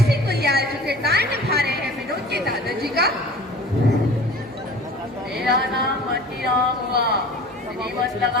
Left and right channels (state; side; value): normal; both; correlation 0.42